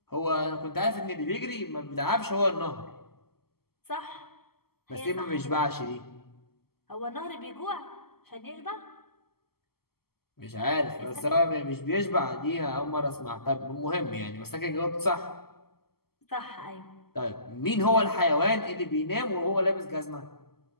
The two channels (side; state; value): right; late; 0.95 ms